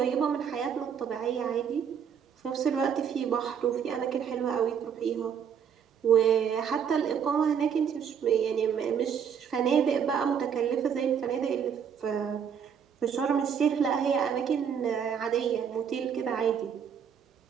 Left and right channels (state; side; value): quieter; left; 7.6 dB